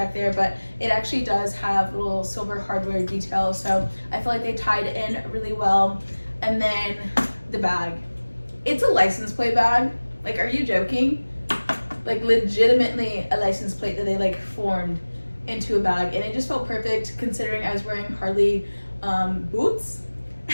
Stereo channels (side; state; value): both; inverted; correlation -1.00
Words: there, but it actually does have little silver hardware details, so I feel like they tied in really well. And then the bag, it's a license plate bag. Like, are you joking? Like legitimately a license plate that they like formed into a bag, and it just felt perfect considering I was wearing Harley boots.